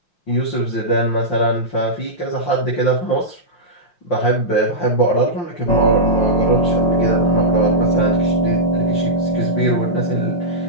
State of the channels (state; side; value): late; right; 5.8 ms